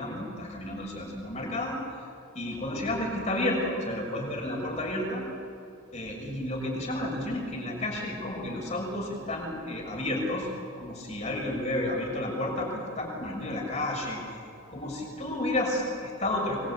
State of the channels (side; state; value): both; normal; correlation 0.29